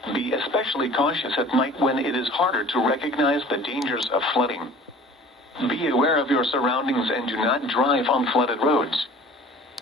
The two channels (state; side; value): normal; both; correlation 0.46